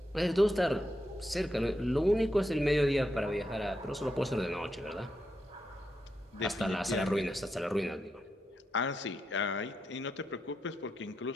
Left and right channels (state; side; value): normal; both; correlation 0.84